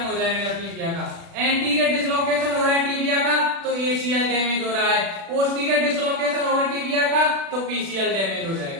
हो जाएगा टीबिया का। एंटीरियर डिसलोकेशन हो रहा है टीबिया का तो ACL डैमेज हो रहा है, पोस्टीरियर डिसलोकेशन होगा टीबिया का तो PCL डैमेज हो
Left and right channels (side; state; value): left; late; 36 ms